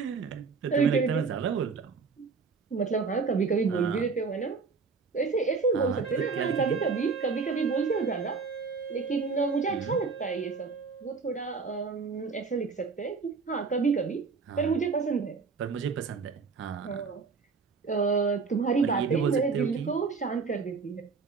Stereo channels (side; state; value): left; quieter; 4.8 dB